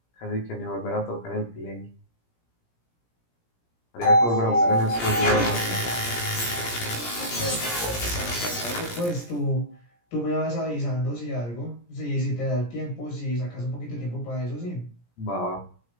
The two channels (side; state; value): right; late; 17 ms